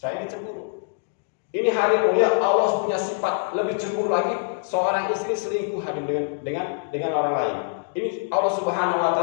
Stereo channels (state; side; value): silent; right; digital silence